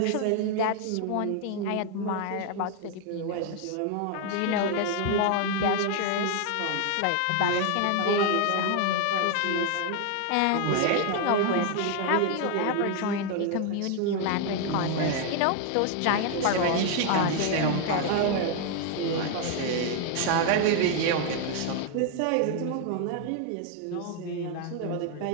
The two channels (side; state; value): both; different; correlation 0.00